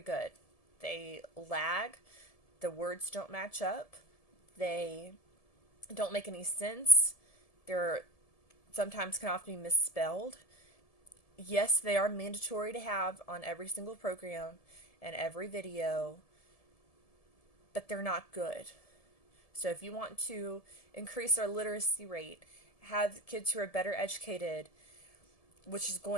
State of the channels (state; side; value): late; right; 1.7 ms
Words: They lag. The words don't match up. They don't make any sense. They're sometimes can often be misspelled. Yes, they are mandatory to have on every single program and every video, but they're not good. So if you want to increase our literacy rate, have kids who are better educated, which is